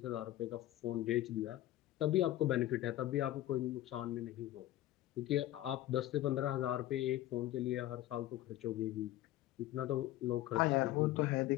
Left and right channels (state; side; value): quieter; right; 14.8 dB